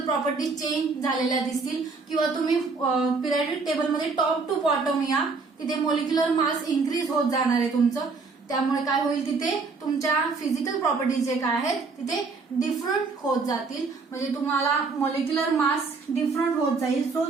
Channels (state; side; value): quieter; left; 4.4 dB